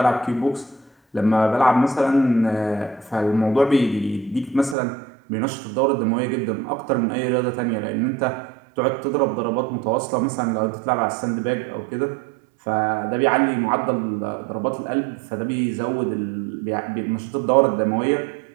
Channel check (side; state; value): left; drops out; at 4.8 s